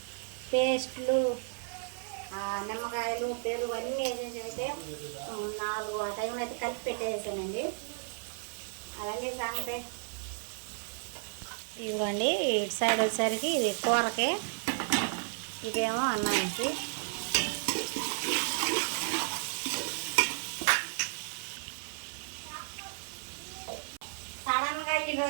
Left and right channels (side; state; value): left; silent; 56 dB below the other